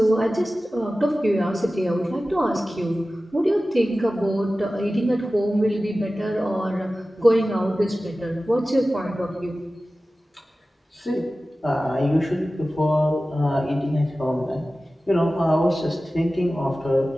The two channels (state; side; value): normal; both; correlation 0.96